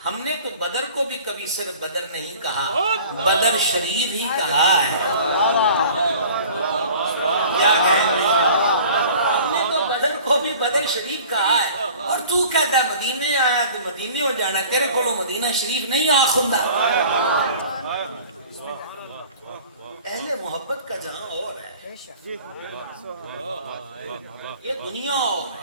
ہم نے تو بدر کو بھی کبھی صرف بدر نہیں کہا بدر شریف ہی کہا ہے کیا کہیں ہم نے تو بدر کو بھی بدر شریف کہا ہے اور تو کہتا ہے مدینے آیا تو مدینے ہو جانا تیرے کو مدینہ شریف نہیں آخندہ اہل محبت کا جہاں اور ہے یہ دنیا اور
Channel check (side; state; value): both; inverted; correlation -0.46